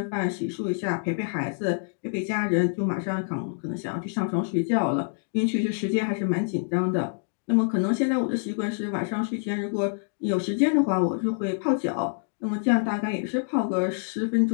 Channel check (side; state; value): right; silent; 61 dB below the other